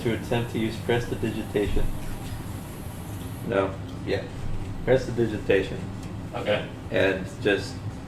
to attempt to use prestidigitation. No. Yeah. Prestidigitation. Okay. And just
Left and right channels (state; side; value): identical; both; correlation 1.00